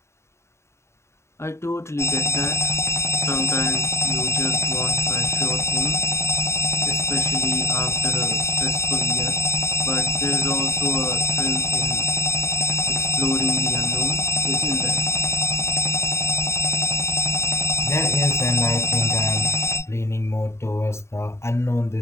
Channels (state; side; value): late; right; 0.13 ms